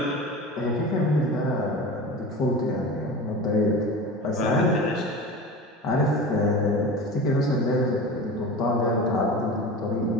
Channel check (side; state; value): both; normal; correlation 0.32